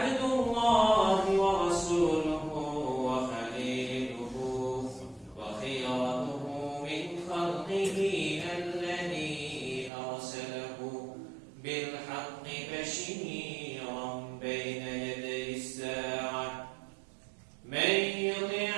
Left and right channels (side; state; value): left; drops out; at 9.9 s